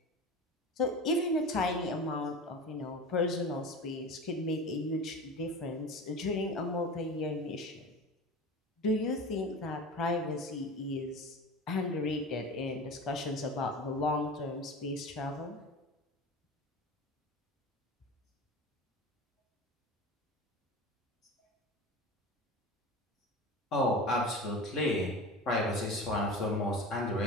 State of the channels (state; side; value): normal; both; correlation 0.32